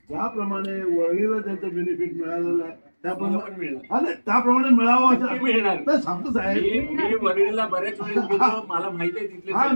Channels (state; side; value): inverted; both; correlation -1.00